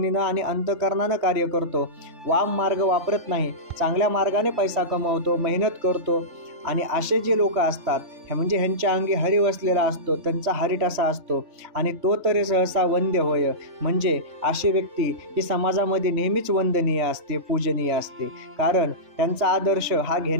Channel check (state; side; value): late; left; 3.2 ms